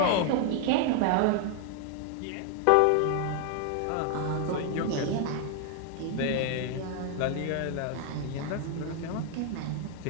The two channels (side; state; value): both; different; correlation 0.00